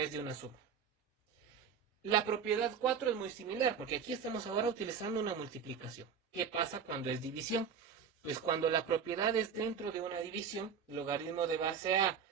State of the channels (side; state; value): left; quieter; 6.9 dB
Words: de una suma. La propiedad 4 es muy similar, porque aquí estamos ahora utilizando una multiplicación. ¿Qué pasa cuando es división? Pues cuando la propiedad es dentro de una división, logaritmo de base A